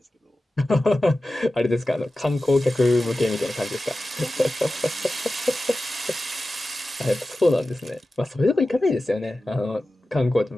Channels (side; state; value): both; normal; correlation 0.94